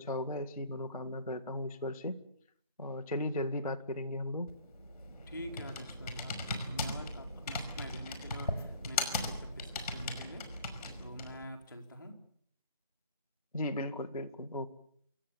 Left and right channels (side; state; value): both; inverted; correlation -0.49